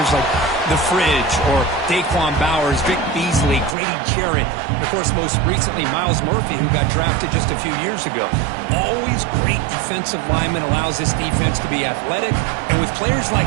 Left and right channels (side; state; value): left; drops out; at 3.8 s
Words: like the Fridge or Daquan Bowers, Vic Beasley, Grady Jarrett, and, of course, most recently, Miles Murphy, who got drafted just a few years ago. Always great defensive lineman, allows this defense to be athletic. And with players